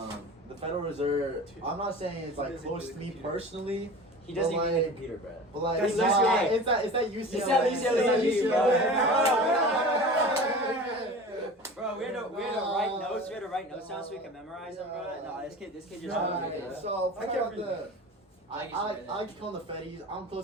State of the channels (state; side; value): normal; both; correlation 0.36